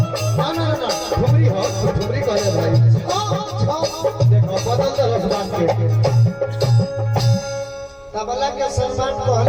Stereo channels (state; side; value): identical; both; correlation 1.00